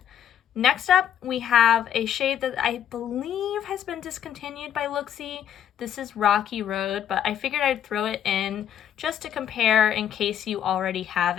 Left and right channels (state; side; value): quieter; right; 9.8 dB